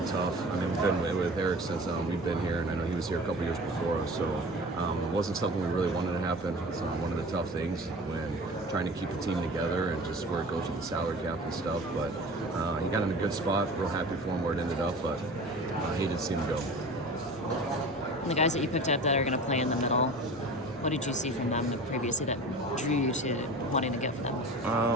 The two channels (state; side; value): normal; both; correlation 0.38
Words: tough. I mean, we've been with Eric since we've been here, and I know he was here a couple years before us, so it wasn't something we really wanted to happen. It's one of the tough things when trying to keep the team together and just where it goes with the salary cap and stuff, but he got in a good spot. Real happy for him where it ended up, but I hated to see him go. And the guys that you picked up that are going to play in the middle, what did you see from them previously that drew you to wanting to get for them?